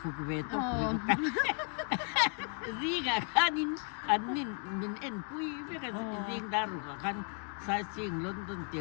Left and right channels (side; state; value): right; quieter; 36.8 dB